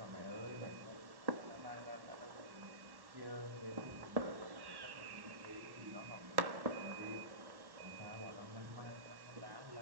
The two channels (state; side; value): late; left; 1.1 ms